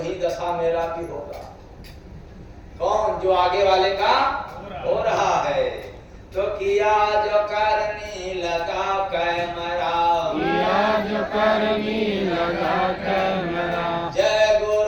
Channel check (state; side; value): identical; both; correlation 1.00